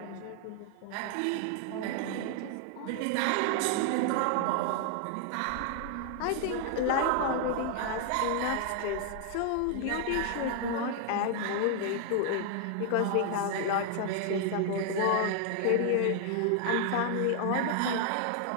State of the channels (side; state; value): both; different; correlation 0.00